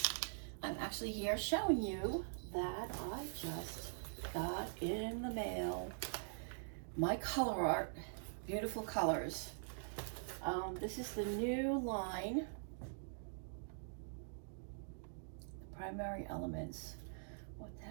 I'm actually here showing you that I just got in the mail my Colourarte Beautiful Colors. This is the new line, the primary elements. What the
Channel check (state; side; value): silent; left; digital silence